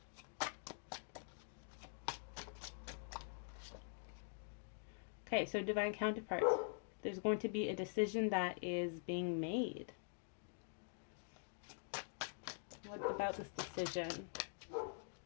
Okay, so divine counterparts. There's going to be a decision that is being made. What about this decision?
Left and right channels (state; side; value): silent; right; digital silence